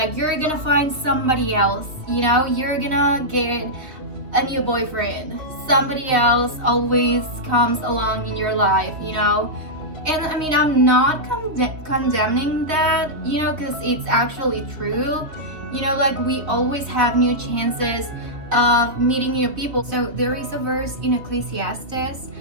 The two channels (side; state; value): left; late; 3.2 ms